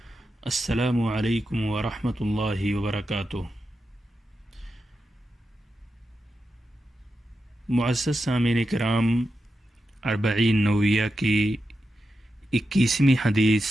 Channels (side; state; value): both; normal; correlation 0.89